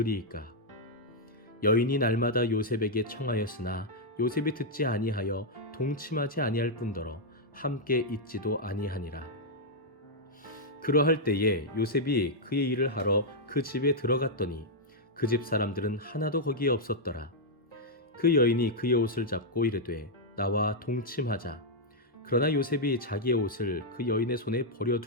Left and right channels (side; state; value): both; normal; correlation -0.05